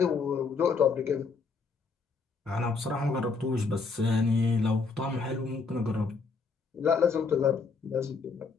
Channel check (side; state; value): right; quieter; 4.7 dB